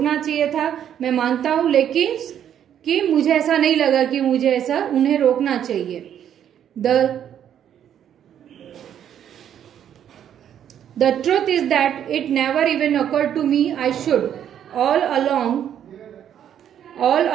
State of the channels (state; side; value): quieter; left; 9.7 dB